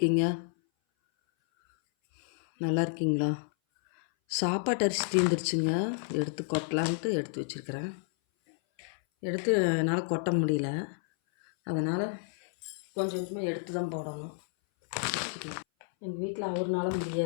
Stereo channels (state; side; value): silent; right; 58 dB below the other